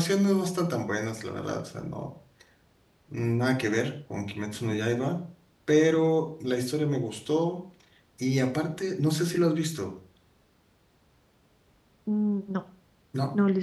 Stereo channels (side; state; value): both; identical; correlation 1.00